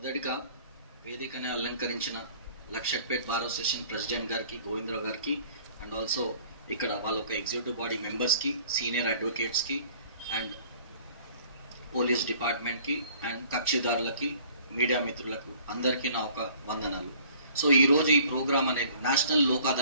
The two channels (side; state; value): both; inverted; correlation -0.53